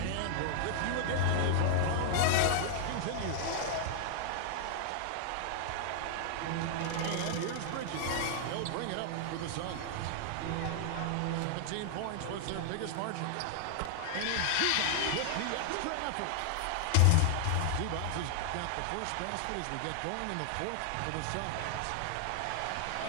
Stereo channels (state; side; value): different; both; correlation 0.00